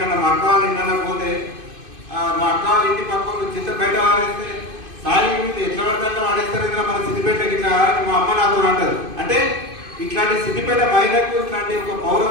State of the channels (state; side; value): late; left; 2.5 ms